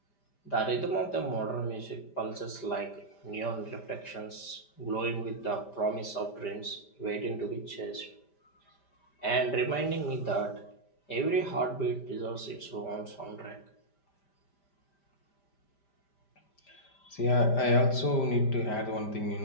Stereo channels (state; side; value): late; right; 5.1 ms